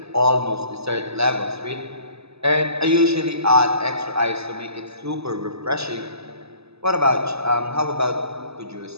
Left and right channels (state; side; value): late; left; 0.79 ms